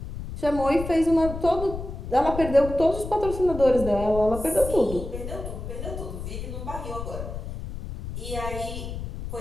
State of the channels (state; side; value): noise; left; rumble, 8 dB below the sound